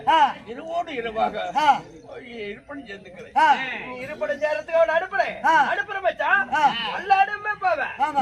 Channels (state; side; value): identical; both; correlation 1.00